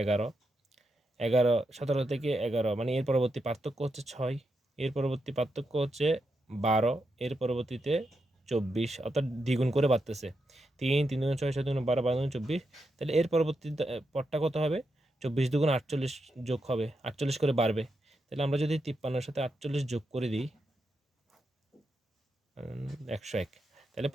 11, 11, 17 থেকে 11 মানে এর পরবর্তী পার্থক্য হচ্ছে 6, এর পরবর্তী পার্থক্য হচ্ছে 12, এর পরবর্তীতে 24, অর্থাৎ দ্বিগুণ করে বাড়তেছে, 3, 3 দুগুণ 6, 7 দুগুণ 12, 12 দুগুণ 24। তাহলে এর পরবর্তী পদটা কত হবে? 24 দুগুণ 48 যোগ হবে, 48 করে বাড়বে। তাহলে আমরা যদি 53-এর সাথে 48 যোগ করে দিই 101, তাহলে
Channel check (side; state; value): both; normal; correlation 0.85